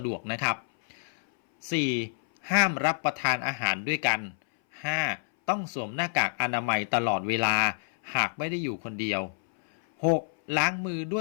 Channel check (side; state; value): right; silent; 58 dB below the other